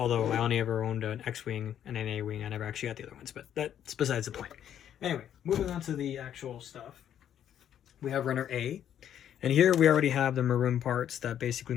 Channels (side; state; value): right; quieter; 10.0 dB